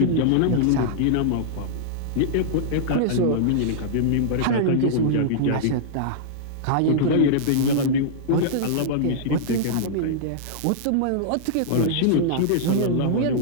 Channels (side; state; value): both; different; correlation -0.02